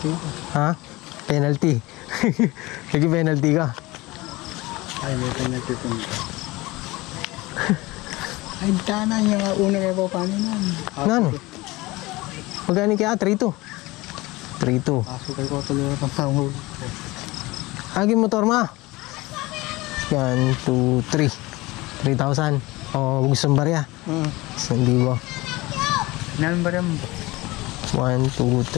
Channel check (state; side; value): quieter; right; 21.1 dB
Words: Ha? Penalty. Sige, penalty ka. Ay, may penalty po nito. Ay, tana yung una may pa paano nun. Ano? Magkano kaya? 3,200. 3,200. Pasukay ko tuloy ang panghuli. Agi motor ma. Yan, 2, 3. 3,000. O, gusto mong barya? Hindi ba? Ilan ba rin? 1, 2,